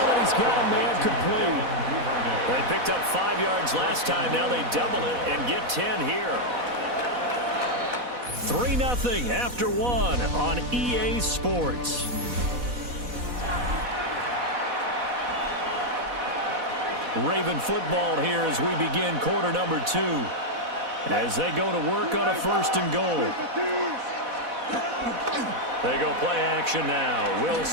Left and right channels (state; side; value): late; left; 4.1 ms